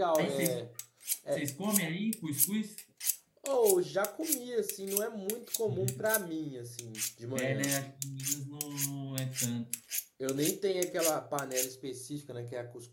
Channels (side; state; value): both; identical; correlation 1.00